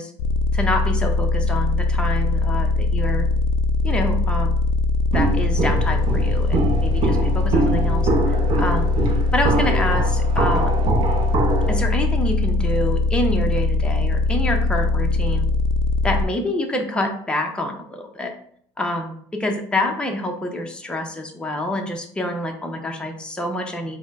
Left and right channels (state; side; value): normal; both; correlation 0.56